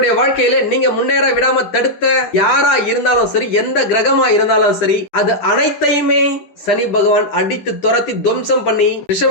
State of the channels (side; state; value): right; late; 9.9 ms